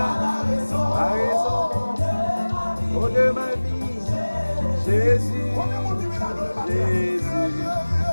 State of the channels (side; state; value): both; inverted; correlation -1.00